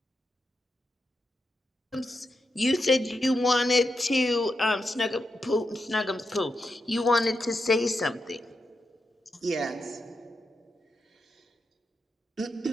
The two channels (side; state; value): both; normal; correlation 0.86